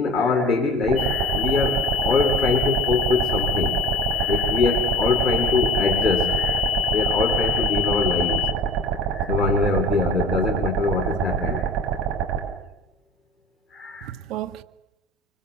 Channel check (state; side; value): normal; both; correlation 0.43